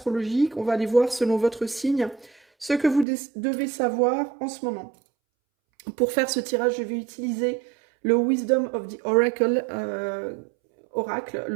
On va aller voir selon votre signe ce que vous devez savoir en ce moment. Pour faire ce tirage, je vais utiliser le Wisdom of the Oracle,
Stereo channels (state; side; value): drops out; left; at 3.1 s